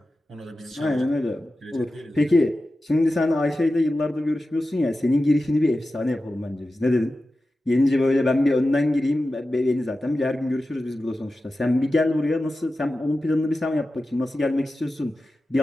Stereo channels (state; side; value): normal; both; correlation 0.93